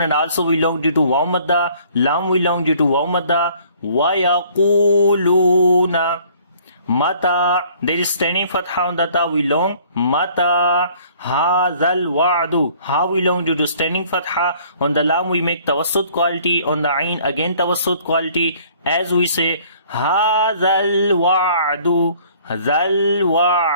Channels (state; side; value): inverted; both; correlation -0.56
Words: and also we long due to waw madda, lam we long due to waw madda. وَيَقُولُونَ mata, there is standing fatha on the ta, we long mata hadhal wa'du, ha we long due to standing fatha. On the lam we make tawassut quality, on the ain again tawassut quality as we say hadhal wa'du, dhal